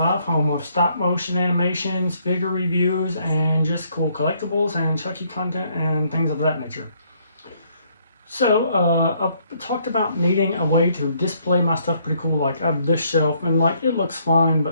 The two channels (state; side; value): inverted; both; correlation -0.68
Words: home of stop motion animations, figure reviews, and just cool collectibles and Chucky content and things of that nature. So, I've talked about needing a way to display my stuff pretty cool, like I have this shelf, and like it looks fine,